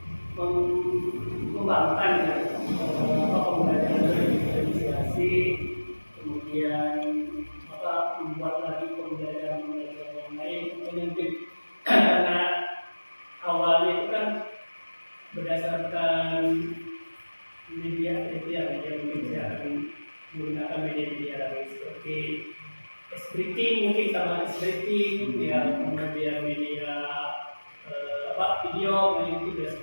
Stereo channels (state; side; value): inverted; both; correlation -1.00